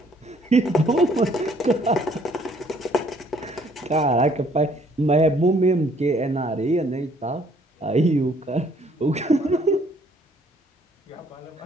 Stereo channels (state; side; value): normal; both; correlation 0.62